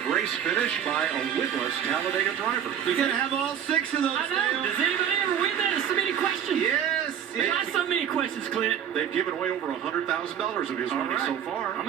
race finish by a winless Talladega driver. You're going to have all 6 of those. I know. Does anybody ever win that? There's so many questions. Yes. Not so many questions, Clint. They've given away over $100,000 of his money so far. I'm going to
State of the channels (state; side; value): quieter; left; 9.2 dB